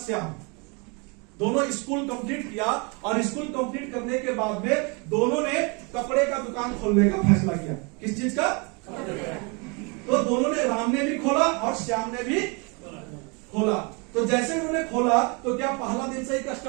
श्याम। दोनों स्कूल कंप्लीट किया और स्कूल कंप्लीट करने के बाद में दोनों ने कपड़े का दुकान खोलने का फैसला किया। किस चीज का? तो दोनों ने, राम ने भी खोला और श्याम ने भी खोला। तो जैसे उन्होंने खोला तो क्या पहला दिन से ही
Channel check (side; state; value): left; quieter; 31.5 dB